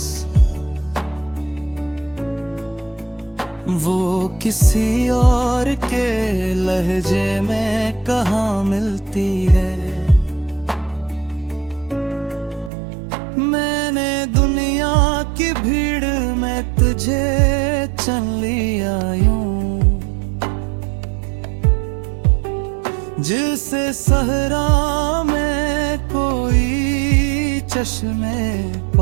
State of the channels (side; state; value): left; drops out; at 12.7 s